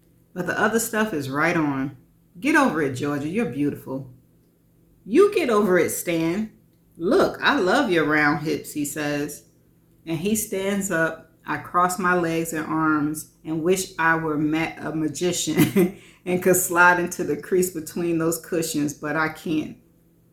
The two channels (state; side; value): identical; both; correlation 1.00